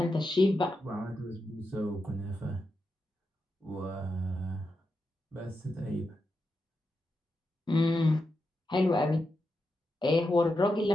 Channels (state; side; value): normal; both; correlation 0.87